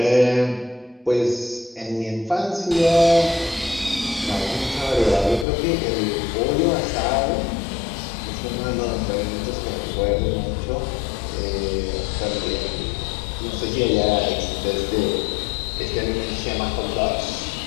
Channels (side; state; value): right; drops out; at 5.5 s